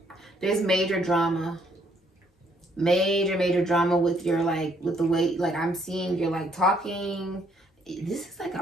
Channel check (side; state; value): both; normal; correlation 0.68